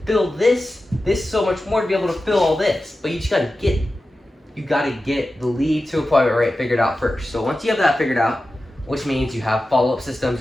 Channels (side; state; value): both; normal; correlation 0.93